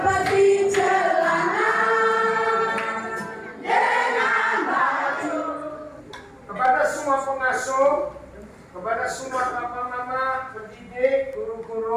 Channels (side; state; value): both; identical; correlation 1.00